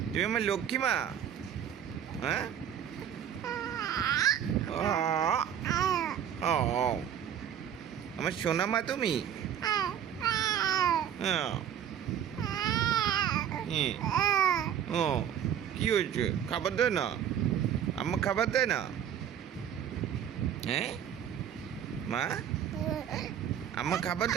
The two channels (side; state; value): left; quieter; 9.3 dB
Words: তুমি আমার লক্ষ্মী মা হ্যাঁ ও আমার সোনা মা তুমি হ্যাঁ ও কি হয়েছে খাবার দেয় না আম্মা খাবার দেয় না হ্যাঁ মা আম্মা খাবার